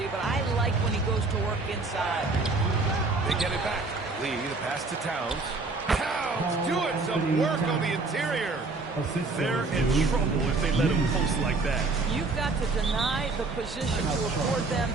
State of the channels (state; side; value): quieter; left; 3.6 dB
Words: but I like when he goes to work inside. They get it back. Lee, the pass to Towns. Towns doing some work on the interior. They're in trouble if they let him post like that. You've got to deny the position to afford them